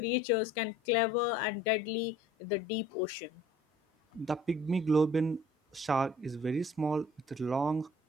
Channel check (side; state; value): both; normal; correlation 0.52